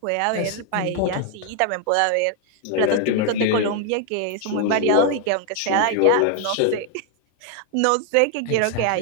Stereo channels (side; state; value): both; different; correlation 0.01